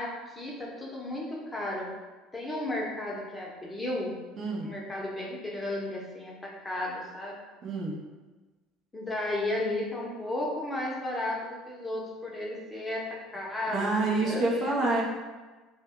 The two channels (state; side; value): normal; both; correlation 0.62